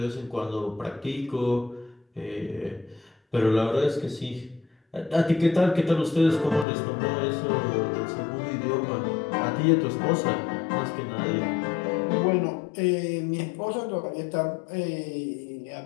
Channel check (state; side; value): drops out; right; at 6.7 s